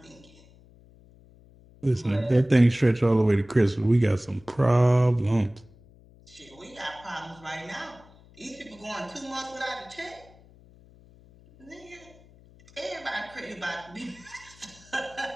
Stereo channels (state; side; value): noise; left; hum, 25 dB below the sound